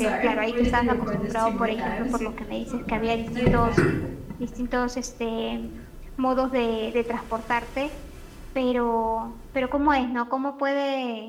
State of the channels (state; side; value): identical; both; correlation 1.00